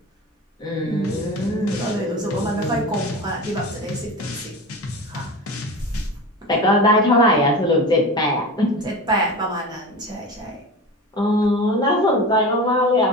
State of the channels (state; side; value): normal; both; correlation 0.30